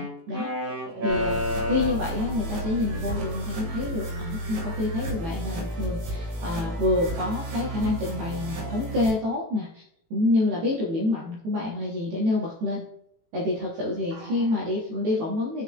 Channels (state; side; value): late; left; 18 ms